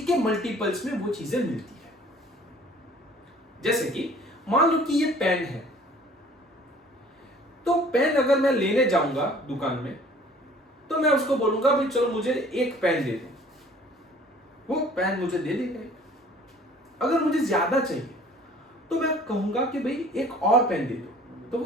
के मल्टीपल्स में वो चीजें मिलती है। जैसे कि मान लो कि ये पेन है, तो पेन अगर मैं लेने जाऊंगा दुकान में तो मैं उसको बोलूंगा भाई चलो मुझे एक पेन दे दो, वो पेन मुझे दे देगा। अगर मुझे ज्यादा चाहिए तो मैं कहूंगा कि भाई एक और पेन दे दो, तो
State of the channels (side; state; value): both; normal; correlation 0.51